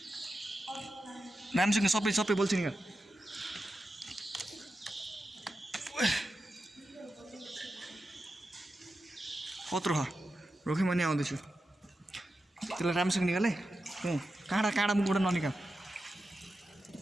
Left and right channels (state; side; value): normal; both; correlation 0.91